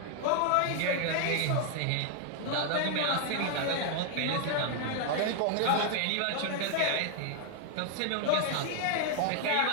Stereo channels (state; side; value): different; both; correlation 0.00